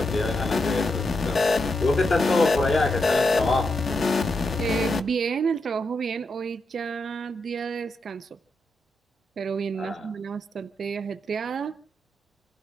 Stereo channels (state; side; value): normal; both; correlation 0.84